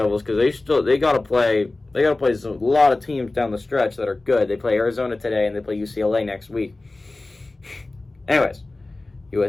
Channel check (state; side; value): quieter; right; 3.1 dB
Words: because they got to play a lot of teams down the stretch that are good. They play Arizona today and they play UCLA next week. Anyways,